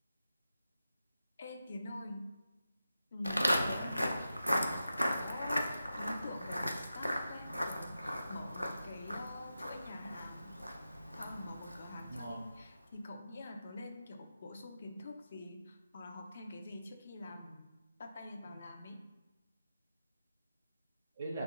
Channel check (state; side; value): inverted; both; correlation -0.90